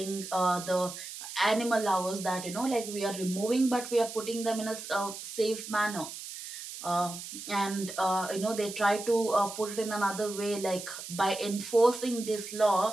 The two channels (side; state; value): right; noise; hiss, 10 dB below the sound